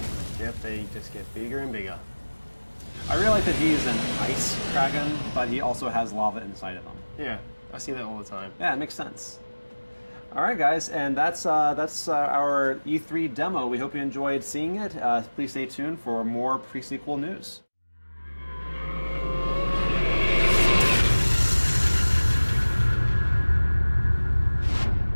Yep, they just get bigger and bigger. I really like that he's an ice dragon, but he also has lava inside of him. Yeah, I see that all the time. Yeah, it makes sense. All right, guys, and that's our E3 demo. We hope you enjoyed seeing it. Please stay tuned for more pre-sequel news.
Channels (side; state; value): both; inverted; correlation -1.00